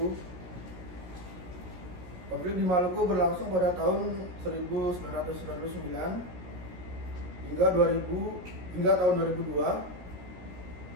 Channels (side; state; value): left; late; 16 ms